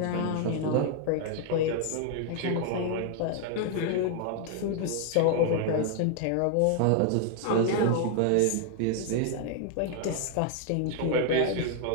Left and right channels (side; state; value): both; different; correlation 0.00